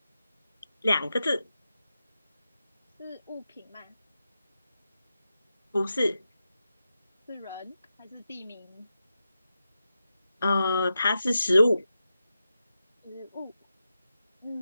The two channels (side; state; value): both; inverted; correlation -0.90